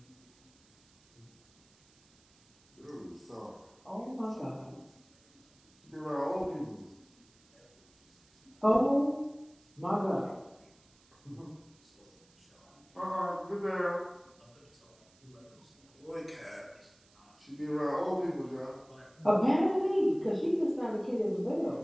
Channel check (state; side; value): noise; right; hiss, 30 dB below the sound